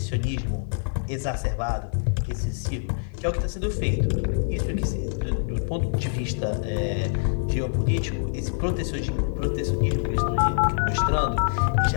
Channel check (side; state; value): right; silent; 56 dB below the other